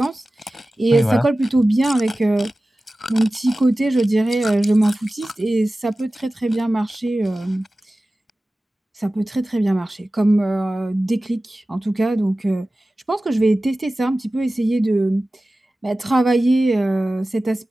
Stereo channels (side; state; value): both; normal; correlation 0.96